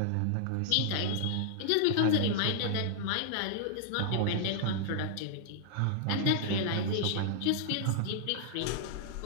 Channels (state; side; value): different; both; correlation -0.01